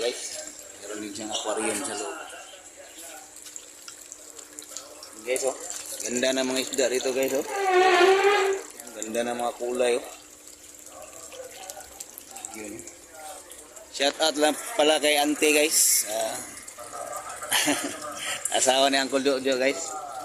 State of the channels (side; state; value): both; identical; correlation 1.00